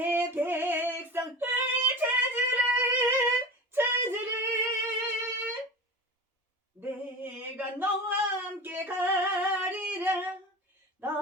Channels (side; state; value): both; normal; correlation 0.31